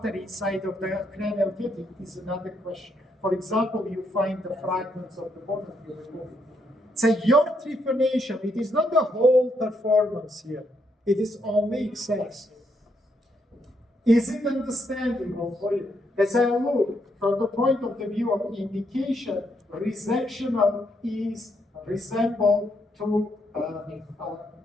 inside of the cranial cavity is another question. For example, you find the fragments of the bone and you remove it. So your trephination, it is not the whole performance here. It is only excess. Is it understandable for you? As I look from the point of the view of indication, resectional is resemble to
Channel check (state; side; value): normal; both; correlation 0.76